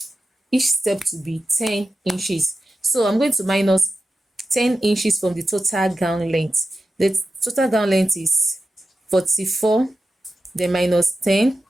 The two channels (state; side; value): normal; both; correlation 0.92